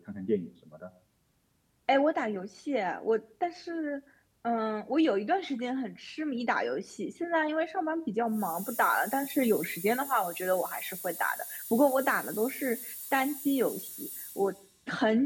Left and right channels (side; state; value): both; identical; correlation 1.00